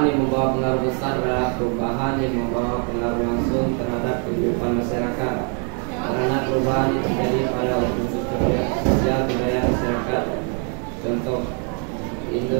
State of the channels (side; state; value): left; quieter; 39.6 dB